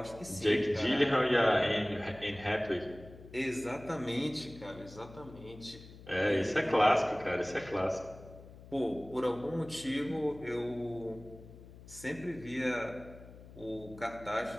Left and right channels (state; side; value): noise; left; hum, 18 dB below the sound